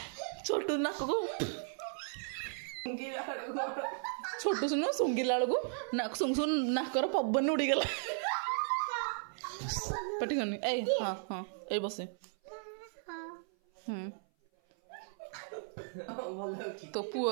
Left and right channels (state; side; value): silent; left; 54 dB below the other